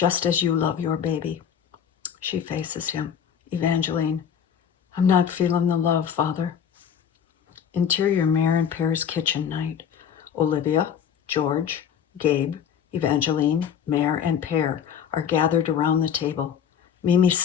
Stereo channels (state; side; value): quieter; right; 8.2 dB